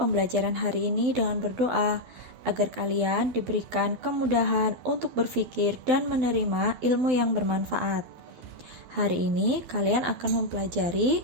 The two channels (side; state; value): left; late; 12 ms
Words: hari ini dengan berdoa agar kalian diberikan kemudahan untuk berpikir dan menerima ilmu yang bermanfaat. Hari ini kalian akan mempelajari